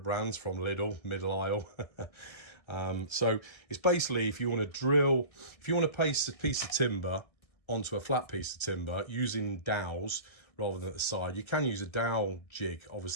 brands from Lidl, middle aisle. So it's basically, if you want to place a piece of timber onto a flat piece of timber using dowels rather than at the side. You can use a dowel jig,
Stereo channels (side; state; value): right; late; 1.6 ms